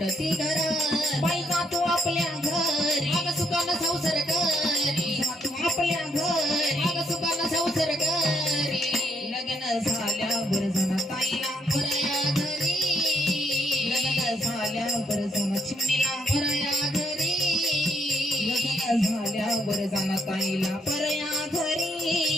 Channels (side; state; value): both; normal; correlation 0.72